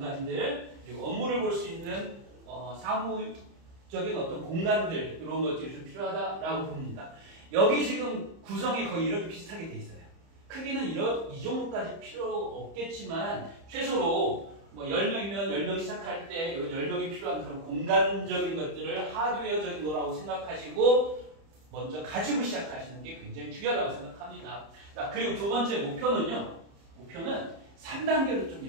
그리고 업무를 볼 수 있는, 사무적인 어떤 공간들, 이런 것들이 좀 필요하다라고 봅니다. 여기 지금 구성이 거의 이렇게 비슷하게 돼 있어요. 크기는 이 정도까지 필요 없겠지만, 최소로 10명이면 10명 시작할 때 10명이 필요한 그런 공간적인 것들을 하드웨어적인 거라고 생각하시고 먼저 가지고 시작하시는 게 굉장히 중요하다고 생각합니다. 자, 그리고 두 번째 목표는요. 목표는 3단계로 좀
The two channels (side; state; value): left; late; 30 ms